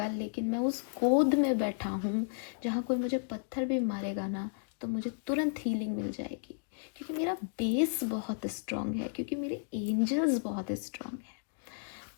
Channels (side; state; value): right; silent; digital silence